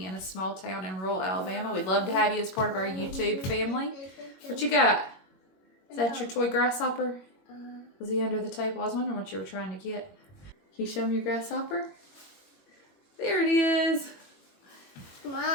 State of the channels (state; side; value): late; right; 21 ms